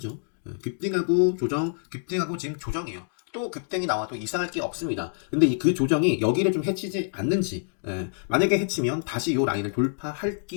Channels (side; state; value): right; silent; digital silence